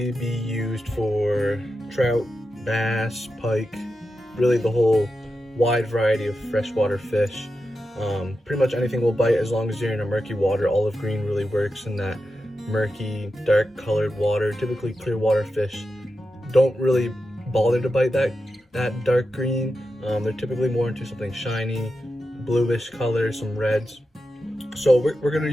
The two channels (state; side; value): normal; both; correlation 0.90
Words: be used for trout, bass, pike, really the whole wide variety of freshwater fish. Pretty much anything will bite as long as you're in a murky water. Olive green really works in that murky, dark colored water. Typically clear water fish don't really bother to bite that dark green. They're typically more into something shiny, bluish color, some reds. So we're gonna